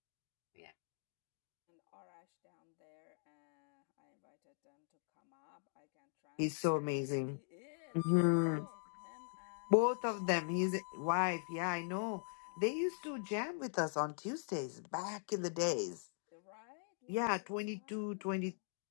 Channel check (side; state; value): right; silent; digital silence